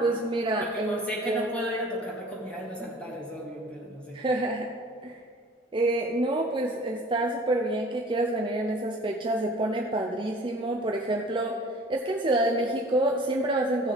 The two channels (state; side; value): normal; both; correlation 0.47